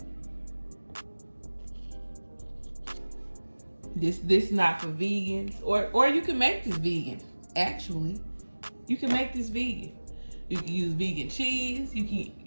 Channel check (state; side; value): inverted; both; correlation -1.00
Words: This is not for vegans, or you can make this vegan. Actually, you can make this vegan. You can use vegan cheese. You can